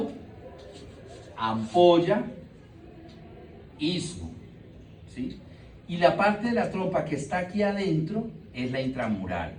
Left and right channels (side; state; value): both; identical; correlation 1.00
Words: ampolla, istmo, ¿sí? Y la parte de la trompa que está aquí adentro es la intramural.